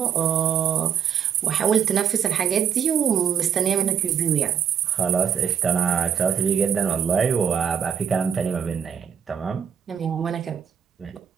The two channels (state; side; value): quieter; left; 8.1 dB